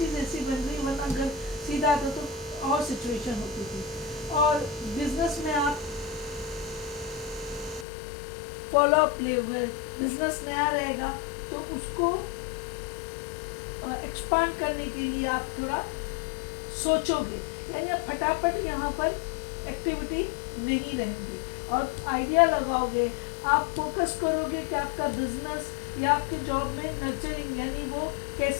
ऐसी बन रही, वरना अगर सीधा आता तो और सिचुएशन होती थी। और बिजनेस में आप फॉलो अप ले हुए, बिजनेस नया रहेगा तो उसको एक्सपांड करने के लिए आप थोड़ा सोचोगे, यानी आप फटाफट यहाँ पर एक्टिविटी नहीं रहेंगी और आइडिया लगाओगे। आप फोकस करोगे कि आपका बिजनेस या आपके जॉब में नर्चरिंग, यानी वो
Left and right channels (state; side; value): drops out; right; at 7.9 s